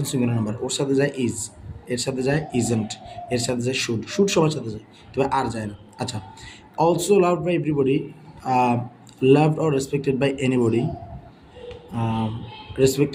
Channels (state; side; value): identical; both; correlation 1.00